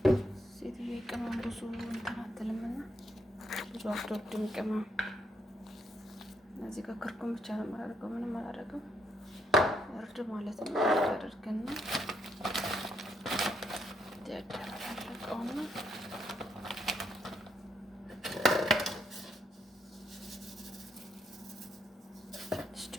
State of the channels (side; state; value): both; normal; correlation 0.75